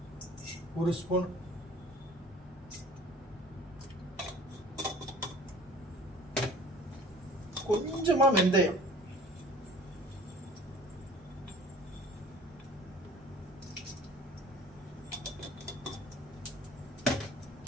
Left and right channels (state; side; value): normal; both; correlation 0.47